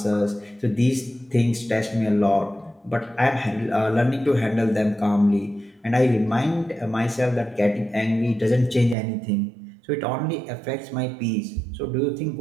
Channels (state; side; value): drops out; left; at 9.0 s